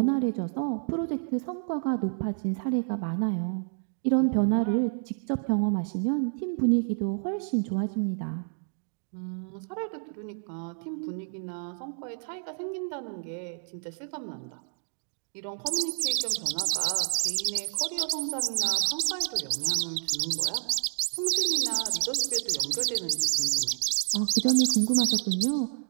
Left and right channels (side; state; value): left; silent; 58 dB below the other